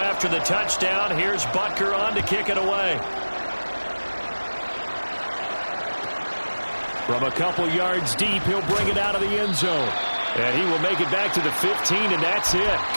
after the touchdown, here's Butker on to kick it away. From a couple yards deep, he'll bring it out of the end zone. And he will make it back to the 15, and that's it.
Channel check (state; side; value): inverted; both; correlation -1.00